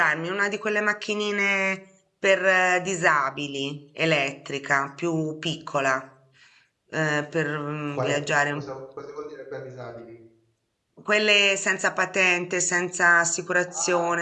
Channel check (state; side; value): identical; both; correlation 1.00